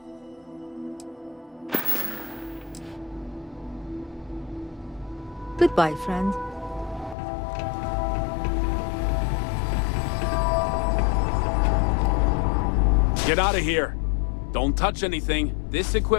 Goodbye, friend. Get out of here. Don't touch anything. This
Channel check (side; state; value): right; drops out; at 7.2 s